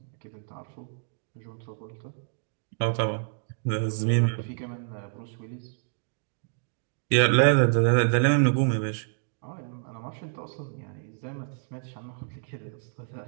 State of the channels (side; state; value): left; silent; digital silence